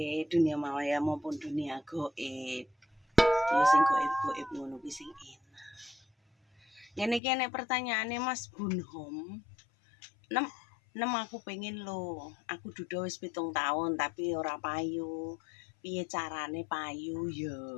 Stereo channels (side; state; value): right; drops out; at 7.2 s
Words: dunia maya maupun dunia goib? Ya sing goib-goib ngono kuwi sing enak. Ngene pertanyaane Mas Bunhom. Nem aku pengen lo. Aku duda wis 7 tahun tapi ora payu. Piye carane payu ya?